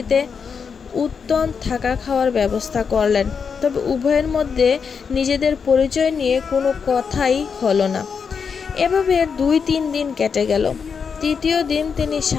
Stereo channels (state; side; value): quieter; right; 6.1 dB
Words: উত্তম থাকা খাওয়ার ব্যবস্থা করলেন। তবে উভয়ের মধ্যে নিজেদের পরিচয় নিয়ে কোনো কথাই হলো না। এভাবে 2-3 দিন কেটে গেল। তৃতীয় দিন তিনি